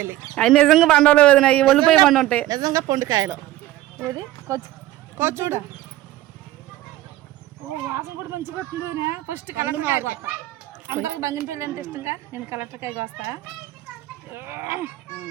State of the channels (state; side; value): quieter; left; 15.3 dB